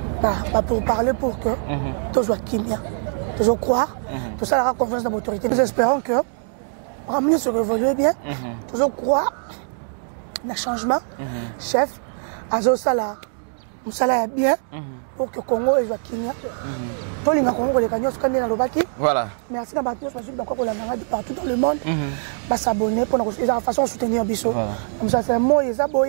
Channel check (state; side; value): silent; left; 64 dB below the other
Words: pour parler pour que tout soit kimia, tout soit croire, tout ça aura confiance dans l'autorité. Nous espérons que ramener se révolue bien, tout soit croire dans le changement. Chef, Azo Sala, Moussala est bien pour que le Congo soit kimia. Tous les Congo, les gagnants, sont dans le Baki. Voilà. Merci à Baki, je suis d'accord pour la maladie partout dans le monde. S'abonner pour la façon de soutenir Bissot. Comme ça, c'est un mot, ils